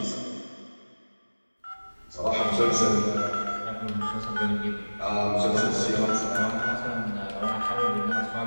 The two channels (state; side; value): inverted; both; correlation -1.00